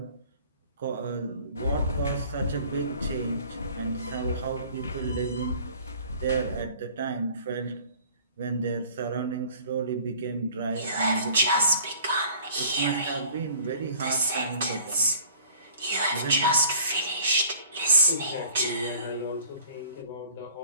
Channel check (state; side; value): inverted; both; correlation -0.51